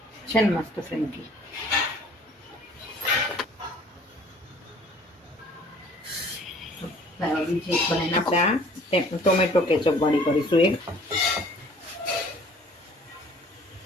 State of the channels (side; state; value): both; normal; correlation 0.53